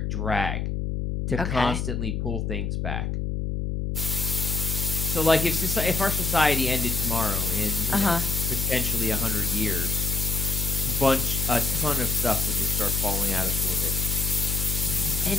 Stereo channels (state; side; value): noise; left; hum, 1 dB below the sound